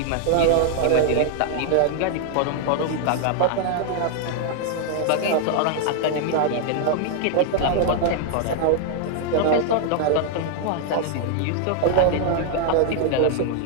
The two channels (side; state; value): both; different; correlation 0.00